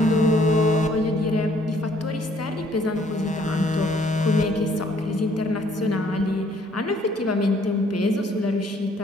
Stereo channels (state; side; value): normal; both; correlation 0.63